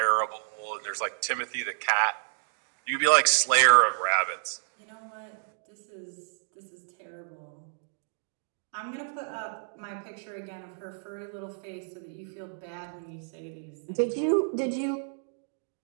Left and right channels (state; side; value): silent; left; digital silence